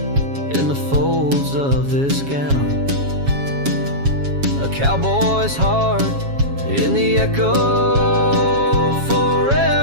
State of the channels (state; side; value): late; left; 7.3 ms